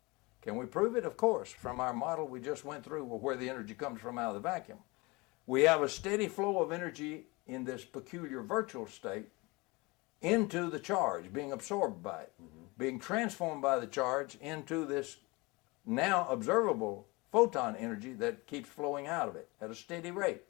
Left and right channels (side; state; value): right; quieter; 24.9 dB